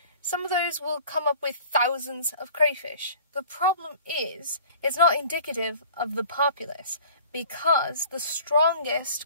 some of those will come up with thousands of crayfish. The problem is, it's not indicative of the populace, because the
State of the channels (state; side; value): inverted; both; correlation -0.47